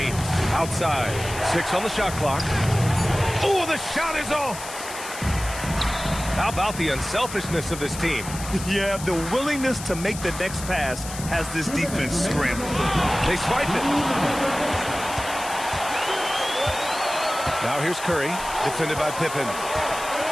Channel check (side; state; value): left; noise; hiss, 11 dB below the sound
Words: outside. 6 on the shot clock. Oh, the shot is off. How about the unselfishness of this team? Yeah, the willingness to make the next pass has this defense scrambled. They swipe it. Now here's Curry, defended by Pippen.